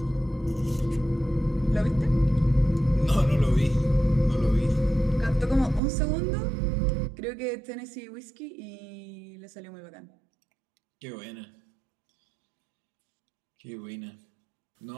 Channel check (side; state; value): left; drops out; at 5.8 s